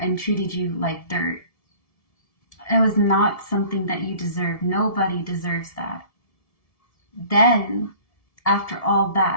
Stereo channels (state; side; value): late; right; 1.7 ms